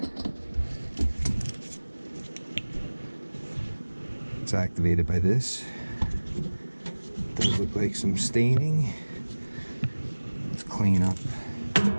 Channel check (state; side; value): inverted; both; correlation -1.00